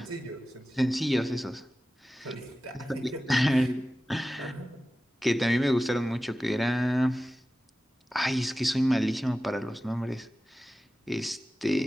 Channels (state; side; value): normal; both; correlation 0.95